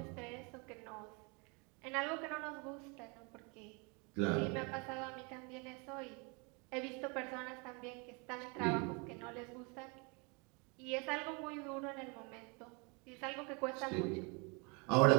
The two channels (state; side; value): quieter; left; 31.4 dB